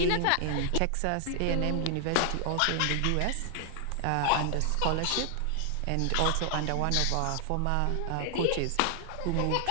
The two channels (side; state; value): both; different; correlation 0.00